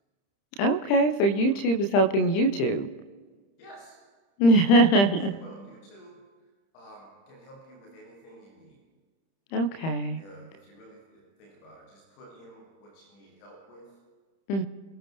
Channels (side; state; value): right; late; 30 ms